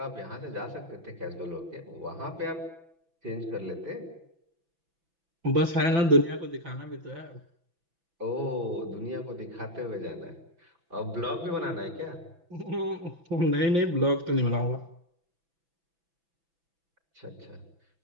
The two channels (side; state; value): left; late; 6.0 ms